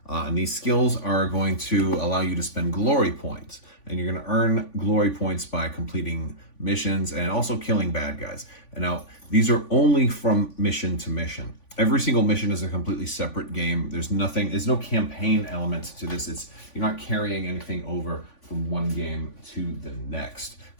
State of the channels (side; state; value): right; late; 3.5 ms